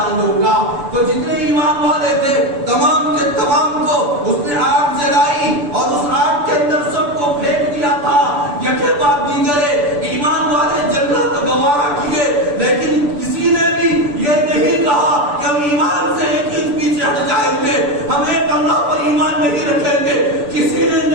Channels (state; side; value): late; left; 6.9 ms